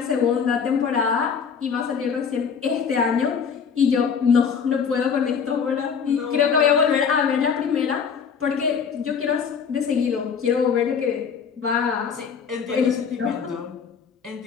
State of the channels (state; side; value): quieter; right; 6.5 dB